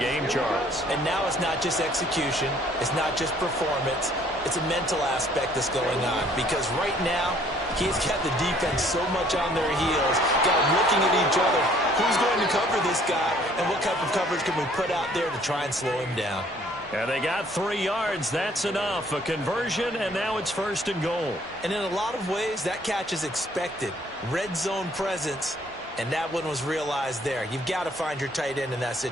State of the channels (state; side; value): normal; both; correlation 0.60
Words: Charles. And now it's not just execution. It's not just performance. It's a mental aspect that's going on because right now he's got the defense so much on their heels, got them looking at each other. Who's going to cover this guy, and what type of coverage can we put out there to try and slow him down? And they got 3 yards. That's enough. A conversion, and now it's 1st and goal. And in a lot of ways, that catch is expected. Red zone presence, and that one was realized there. You've got to find your tight end in that